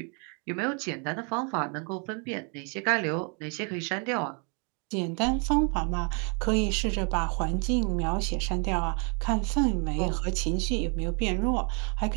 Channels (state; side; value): quieter; left; 36.8 dB